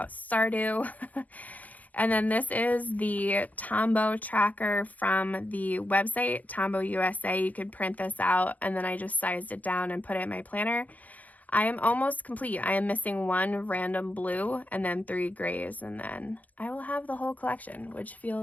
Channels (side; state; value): right; late; 0.076 ms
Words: Stardew. And then this is the Tombow tracker from the website, Tombow USA. You could print this out, and then I just sized it down and put it in my planner. I am almost complete. I am missing 1 random blue and then 3 grays, and then I will have the whole collection, which